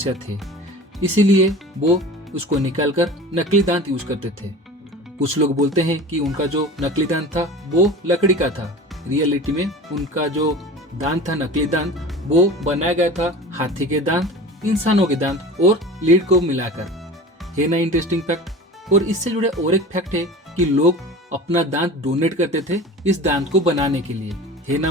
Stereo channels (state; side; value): normal; both; correlation 0.36